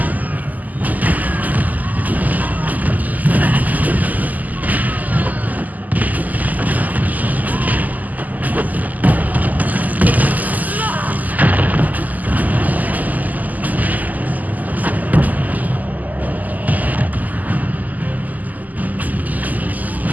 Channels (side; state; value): left; late; 0.080 ms